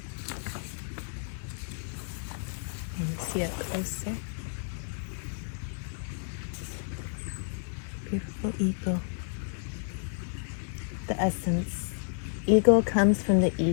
And see it closer. Beautiful eagle. The essence. Eagle comes from the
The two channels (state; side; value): silent; right; digital silence